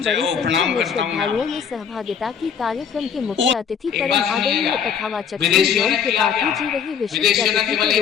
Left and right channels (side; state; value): right; quieter; 7.4 dB